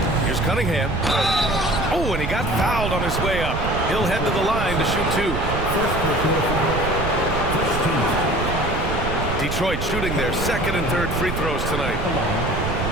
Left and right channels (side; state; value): right; noise; rumble, 3 dB below the sound